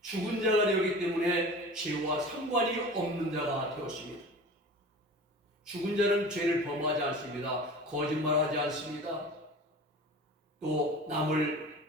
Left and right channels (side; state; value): both; normal; correlation 0.38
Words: 죽은 자가 되었기 때문에 죄와 상관이 없는 자가 되었습니다. 죽은 자는 죄를 범하지 않습니다. 거짓말하지 않습니다. 또 남을